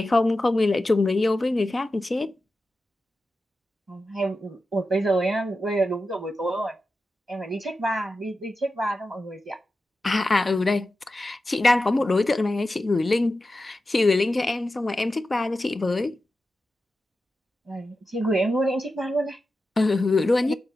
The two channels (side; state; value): both; normal; correlation 0.92